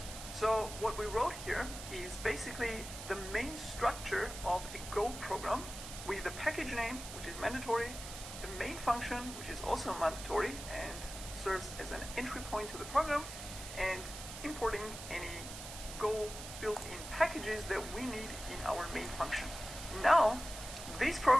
So what we wrote here is basically the main structure of a Go program with the package name, which is mandatory, the main function, which is also mandatory and serves as an entry point to the program, and importing any Go built-in packages that we need in our main function. Now, this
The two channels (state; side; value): noise; right; hiss, 10 dB below the sound